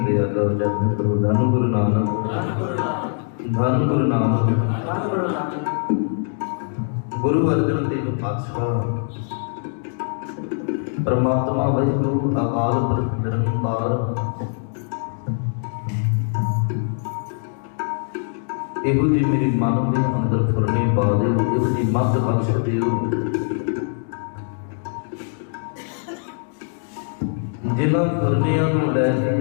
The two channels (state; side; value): silent; right; 59 dB below the other